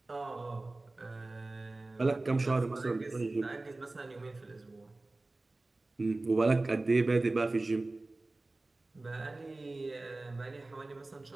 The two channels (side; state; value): left; quieter; 3.0 dB